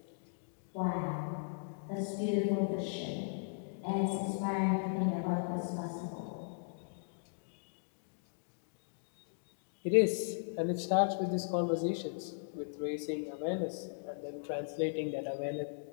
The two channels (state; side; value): silent; right; digital silence